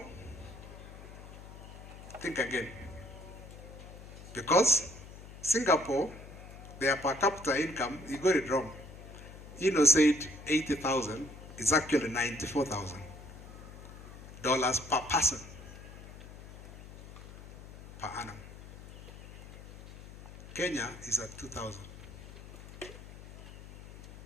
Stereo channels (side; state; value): left; noise; hum, 15 dB below the sound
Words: Think again. Because Singapore, their per capita income, you got it wrong. Hino said 80,000, it's actually $94,000 per person per annum. Kenya is at 2,000.